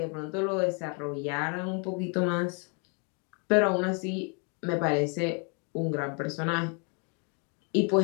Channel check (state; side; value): quieter; right; 36.2 dB